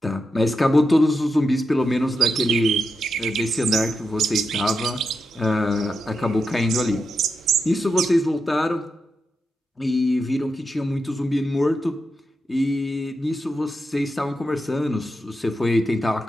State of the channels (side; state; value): both; normal; correlation 0.87